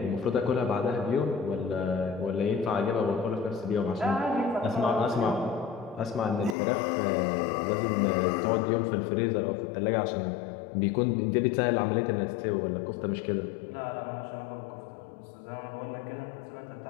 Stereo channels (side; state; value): right; drops out; at 6.6 s